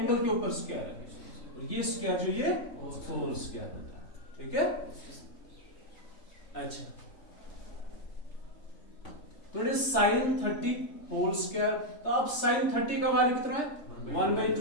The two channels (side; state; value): right; late; 3.5 ms